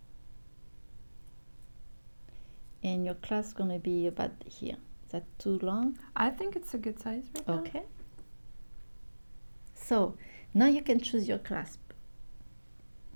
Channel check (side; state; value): both; inverted; correlation -1.00